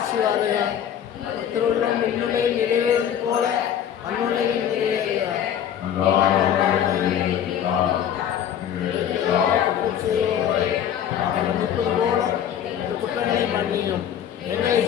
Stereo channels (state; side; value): quieter; right; 9.5 dB